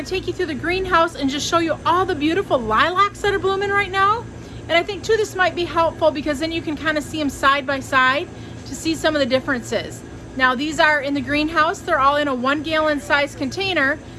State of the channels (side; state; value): both; identical; correlation 1.00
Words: take you through the greenhouse and just show you all the beautiful lilacs that are blooming right now. And I think too this might be helpful because then you can kind of see them side by side to see some of the differences. Now these are in the greenhouse. They're all in a 1 gallon size container,